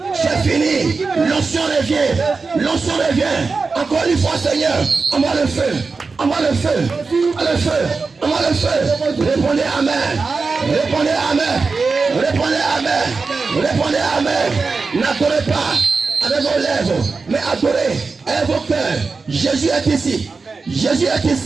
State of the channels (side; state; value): left; quieter; 4.4 dB